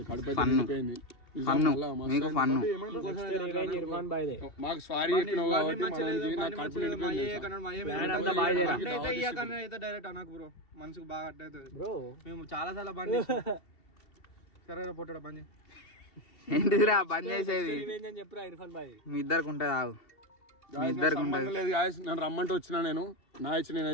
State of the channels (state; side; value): late; right; 2.7 ms